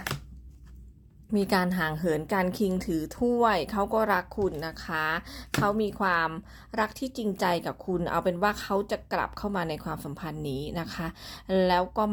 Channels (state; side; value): identical; both; correlation 1.00